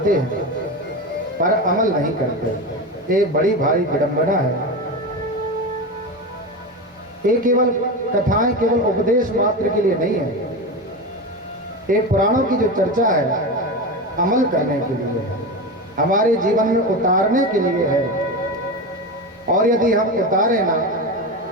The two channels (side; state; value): both; normal; correlation 0.21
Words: हैं, पर अमल नहीं करते। एक बड़ी भारी विडंबना है। ये केवल कथाएं केवल उपदेश मात्र के लिए नहीं है, ये पुराणों की जो चर्चा है अमल करने के लिए है, हमारे जीवन में उतारने के लिए है। और यदि हम उतारे ना